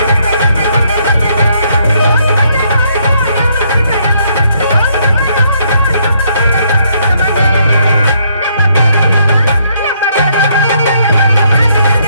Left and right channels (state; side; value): inverted; both; correlation -0.70